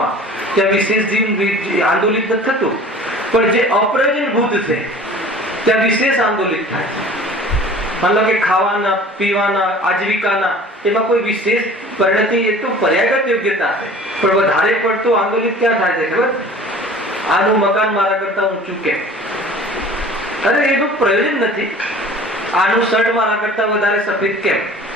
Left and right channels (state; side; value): normal; both; correlation 0.45